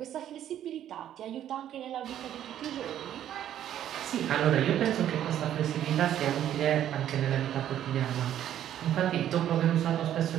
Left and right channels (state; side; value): quieter; left; 11.1 dB